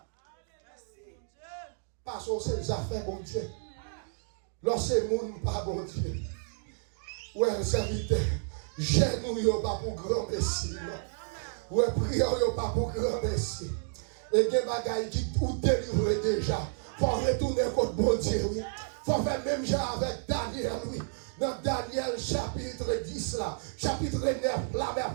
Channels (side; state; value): left; silent; digital silence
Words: Parce que c'est les affaires, bon Dieu. Lorsque le monde pas bon Dieu. Ouais, serviteur. Genou yo pas pour grand messie. Ouais, prière yo pas pour grand messie. Et des bagailles qui tout délivré déjà. Faut retourner contre bon Dieu. Faut faire même genre avec Daniel, oui. Dans Daniel chapitre 10 là, chapitre 9 là,